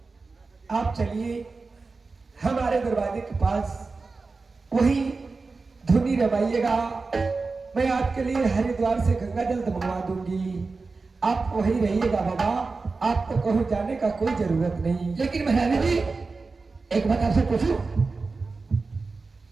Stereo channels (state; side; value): quieter; left; 4.0 dB